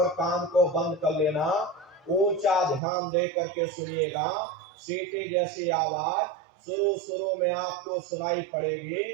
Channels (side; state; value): left; drops out; at 2.8 s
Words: कान को बंद कर लेना, ऊंचा ध्यान दे करके सुनिएगा। सीटी जैसी आवाज शुरू शुरू में आपको सुनाई पड़ेगी,